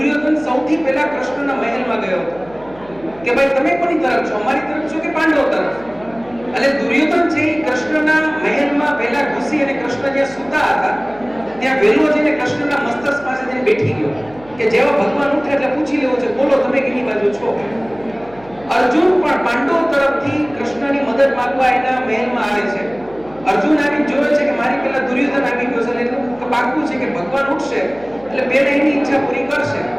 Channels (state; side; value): noise; right; hum, 23 dB below the sound